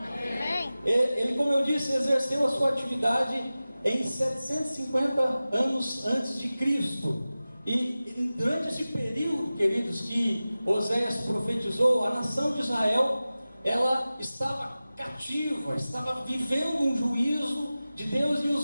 Ele, como eu disse, exerceu a sua atividade em 750 anos antes de Cristo. E durante esse período, queridos, que Oséias profetizou, a nação de Israel, ela estava cativa, estava vivendo um juízo de Deus, e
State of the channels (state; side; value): inverted; both; correlation -0.96